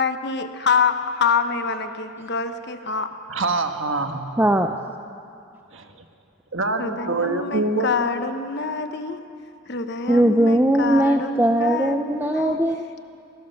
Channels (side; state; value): both; normal; correlation 0.39